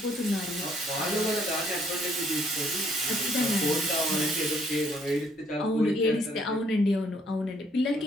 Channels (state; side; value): normal; both; correlation 0.66